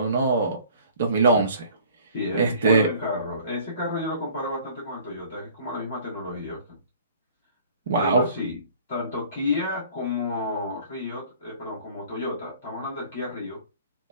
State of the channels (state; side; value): inverted; both; correlation -0.52